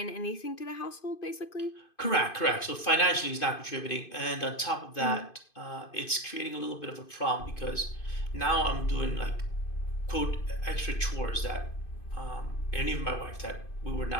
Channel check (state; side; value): late; right; 2.5 ms